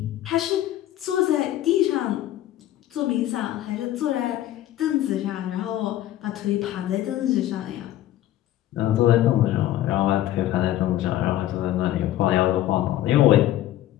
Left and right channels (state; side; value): quieter; right; 13.5 dB